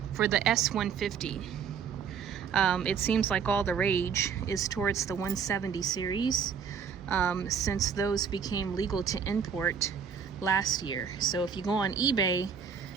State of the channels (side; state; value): left; quieter; 6.8 dB